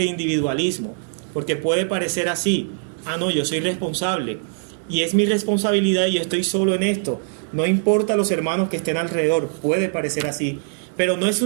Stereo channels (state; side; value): silent; left; digital silence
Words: individualismo, porque puede parecer así: no, yo soy responsable y es mi responsabilidad y yo estoy solo en esto, no importa los hermanos que estén alrededor. Puede parecer así, pero no es